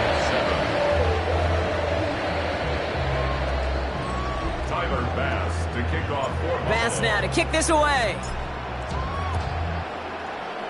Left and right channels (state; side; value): identical; both; correlation 1.00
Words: Bass to kick off for Bass now to kick this away.